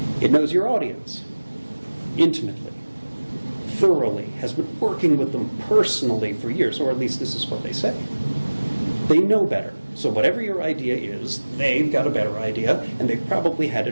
It knows your audience intimately, thoroughly, has been working with them personally for years, or at least this is what they say. They know better. So whatever your idea is, they've got a better idea, and they've probably had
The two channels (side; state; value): both; inverted; correlation -1.00